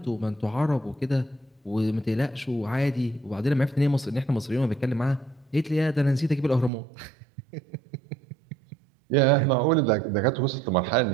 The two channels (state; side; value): drops out; left; at 6.7 s